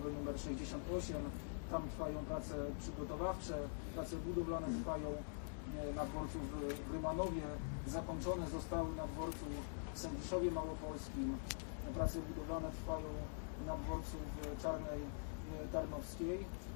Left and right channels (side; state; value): right; silent; digital silence